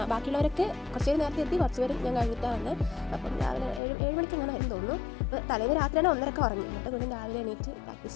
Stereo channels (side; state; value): right; drops out; at 3.8 s